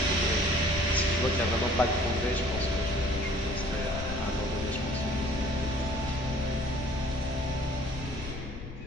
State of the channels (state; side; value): noise; left; rumble, 10 dB below the sound